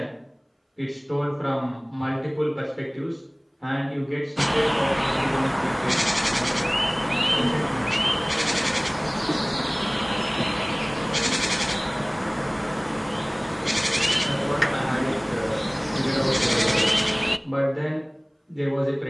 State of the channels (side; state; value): both; identical; correlation 1.00